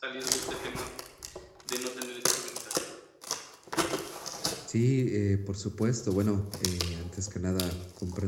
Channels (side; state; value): both; identical; correlation 1.00